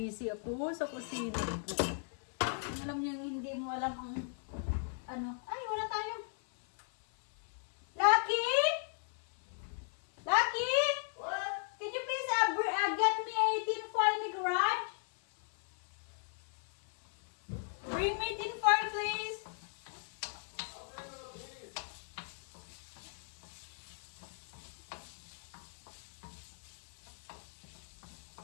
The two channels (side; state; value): right; silent; 53 dB below the other